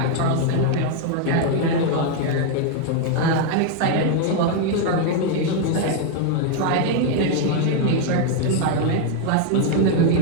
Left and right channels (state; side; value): different; both; correlation 0.00